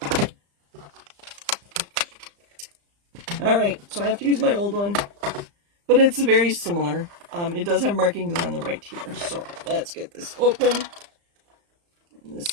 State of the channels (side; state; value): left; late; 35 ms